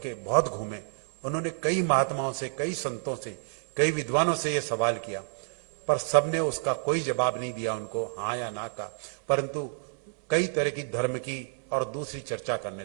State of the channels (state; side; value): silent; left; digital silence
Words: बहुत घूमे। उन्होंने कई महात्माओं से, कई संतों से, कई विद्वानों से यह सवाल किया, पर सबने उसका कोई जवाब नहीं दिया उनको, हाँ या ना का, परंतु कई तरह की धर्म की और दूसरी चर्चा करने